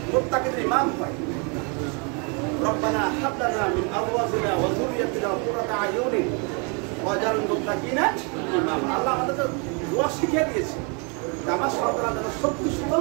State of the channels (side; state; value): left; quieter; 34.4 dB